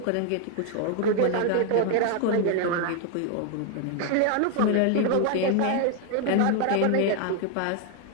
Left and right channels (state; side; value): different; both; correlation 0.00